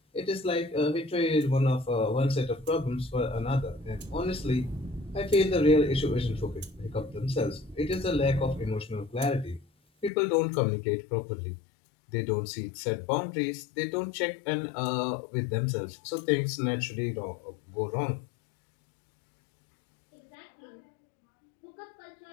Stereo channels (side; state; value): right; drops out; at 10.1 s